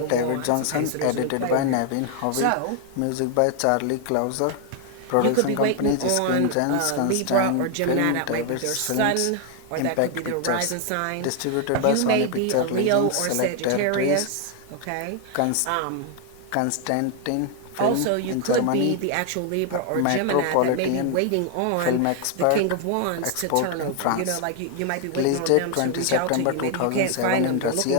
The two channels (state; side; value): different; both; correlation 0.00